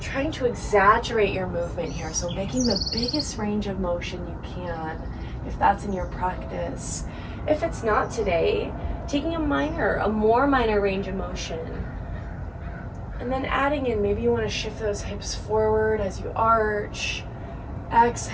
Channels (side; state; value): both; identical; correlation 1.00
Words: to exaggerate your movement here, so making the biggest range of motion you can, if that's in your practice. If it's not today, taking a more minor range of motion. And then adding in, maybe you want to shift those hips forward as you arch.